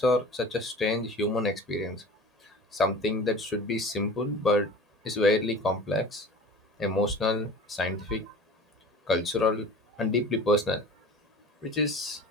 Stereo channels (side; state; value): both; normal; correlation 0.39